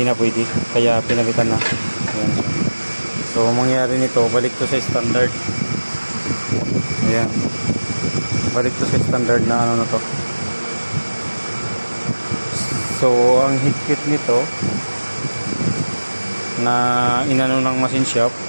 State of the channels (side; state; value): both; inverted; correlation -1.00